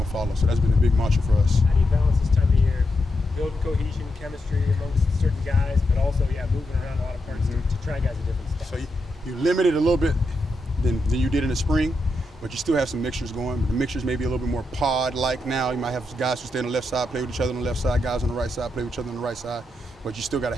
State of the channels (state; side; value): normal; both; correlation 0.84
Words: to follow, so that's been a big mantra for us. How do you balance this time of year? Build cohesion, chemistry amongst certain guys, but also, moving around a lot of parts to try guys at different spots. So you limit it a little bit than you did in the spring, but you still have some mixtures going. The mixtures may be a little bit more pod-like now. You might have guys who stay on the left side, play with each other on the left side, guys on the right side, play with each other on the right side. But you still got to